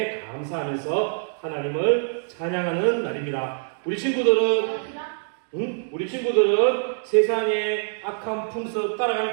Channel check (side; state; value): left; silent; digital silence